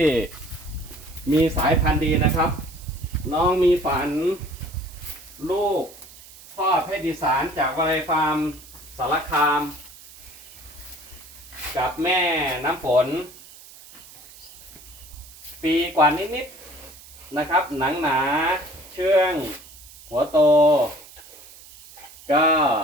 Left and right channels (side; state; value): right; noise; hiss, 20 dB below the sound